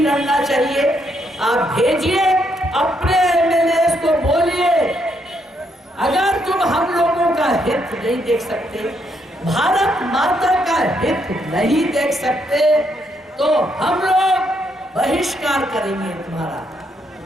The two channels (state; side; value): normal; both; correlation 0.75